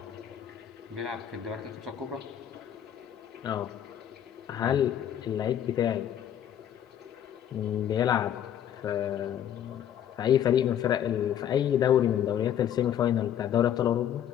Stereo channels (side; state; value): right; quieter; 10.1 dB